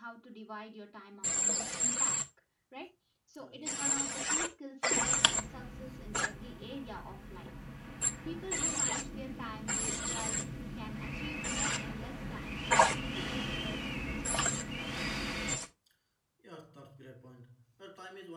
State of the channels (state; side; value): identical; both; correlation 1.00